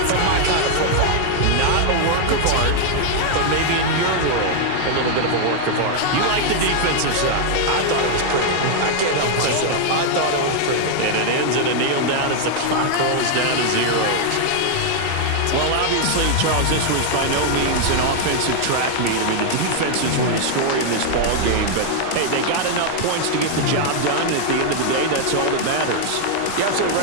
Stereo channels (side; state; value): both; different; correlation 0.00